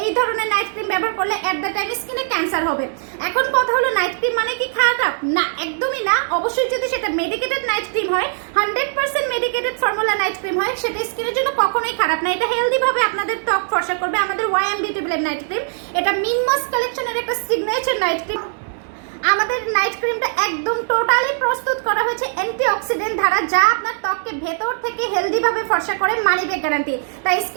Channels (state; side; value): silent; left; 66 dB below the other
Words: এই ধরনের নাইট ক্রিম ব্যবহার করলে এট দ্য টাইম স্কিনে ক্যান্সার হবে। এখন কথা হলো নাইট ক্রিম মানে কি খারাপ? না, একদমই না। অবশ্যই যদি সেটা মেডিকেটেড নাইট ক্রিম হয়, 100% মেডিকেটেড ফর্মুলা নাইট ক্রিম হয়, সেটা স্কিনের জন্য কখনোই খারাপ না। এটা হেলদি ভাবে আপনাদের ত্বক ফর্সা করবে। আমাদের YM beauty blend night cream, এটা মিনমস কালেকশনের একটা সিগনেচার নাইট ক্রিম। আমাদের নাইট ক্রিমটা একদম টোটালি প্রস্তুত করা হয়েছে অ্যান্টিঅক্সিডেন্ট দ্বারা, যা আপনার ত্বককে ভেতর থেকে হেলদি ভাবে ফর্সা করে, মানি ব্যাক গ্যারান্টি। তাই